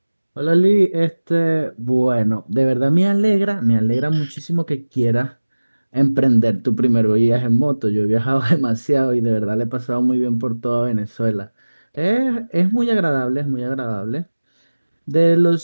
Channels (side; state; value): both; inverted; correlation -1.00